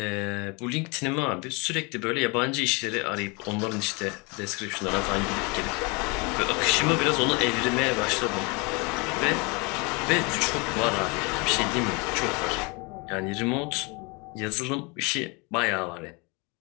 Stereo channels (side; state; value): right; quieter; 29.4 dB